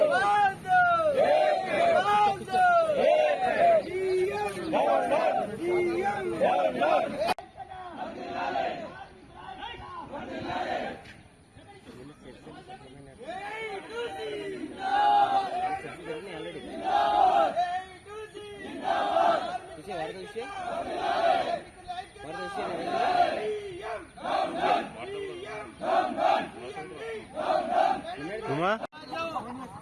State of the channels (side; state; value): both; identical; correlation 1.00